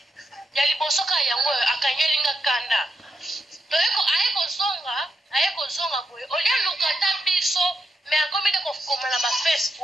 ya liboso ka yango akanyelinga kanda toyeko aye kozonga boye olia luka ta biso me akomi nde kokoma na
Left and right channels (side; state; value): both; normal; correlation 0.83